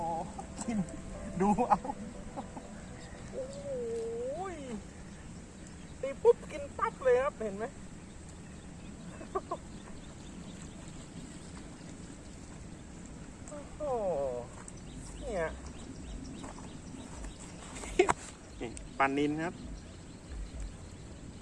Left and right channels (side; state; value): both; identical; correlation 1.00